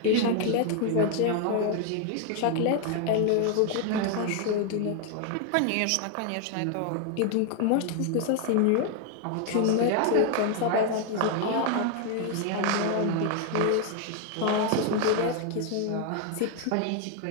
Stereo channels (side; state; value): both; different; correlation 0.00